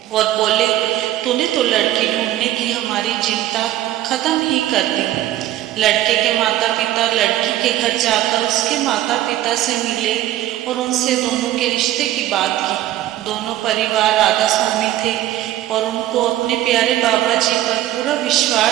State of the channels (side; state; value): left; quieter; 13.8 dB